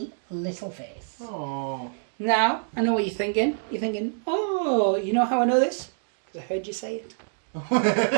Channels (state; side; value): silent; left; digital silence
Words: little face. Oh. Now, I know what you're thinking. You're thinking, oh, you know how I know this? Because I heard you say it.